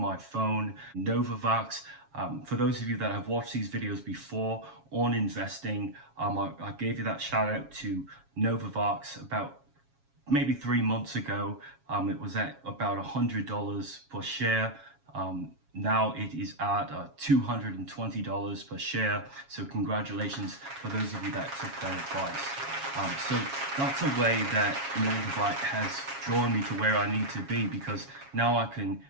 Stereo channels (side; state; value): left; late; 7.3 ms